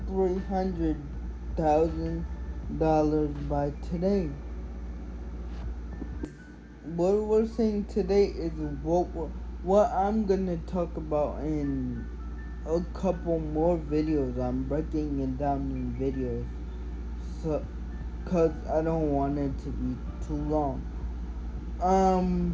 $300,000 by today. What we're saying today is what I'm gonna talk about in a couple more videos. I'm breaking it down in videos, so cause I don't want it to be too long.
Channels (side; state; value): both; identical; correlation 1.00